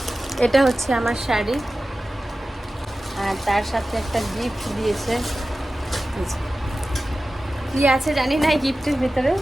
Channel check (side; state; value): both; normal; correlation 0.95